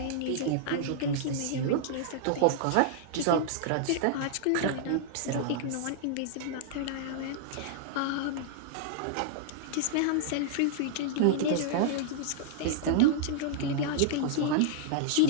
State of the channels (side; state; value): both; different; correlation -0.02